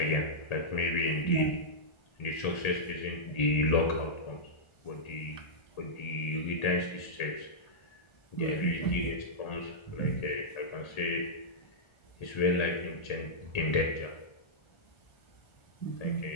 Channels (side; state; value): right; late; 1.4 ms